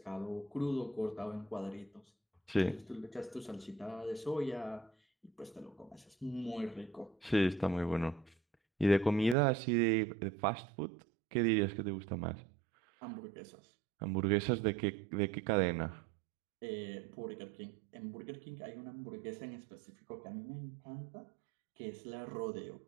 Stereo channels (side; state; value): left; drops out; at 9.3 s